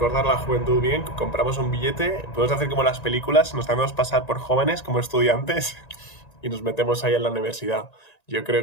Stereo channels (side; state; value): right; late; 1.9 ms